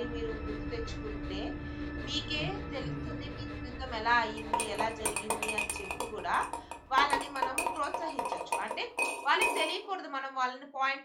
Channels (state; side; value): identical; both; correlation 1.00